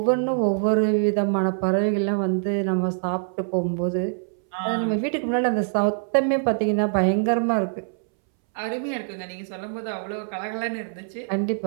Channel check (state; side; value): silent; left; 62 dB below the other